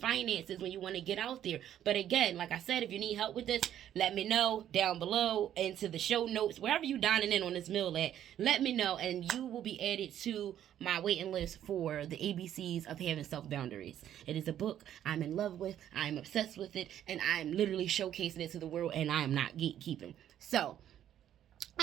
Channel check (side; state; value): left; quieter; 10.9 dB